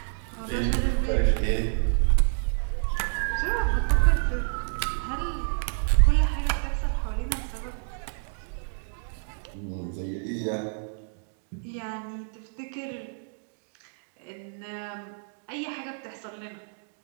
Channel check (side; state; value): left; silent; digital silence